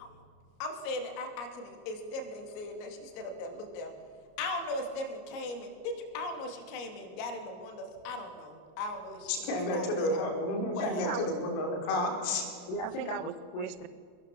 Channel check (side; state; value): right; late; 33 ms